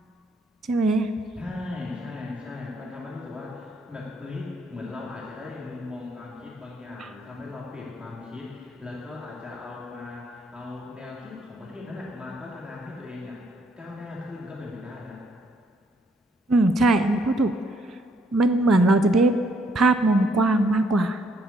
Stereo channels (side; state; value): both; normal; correlation 0.69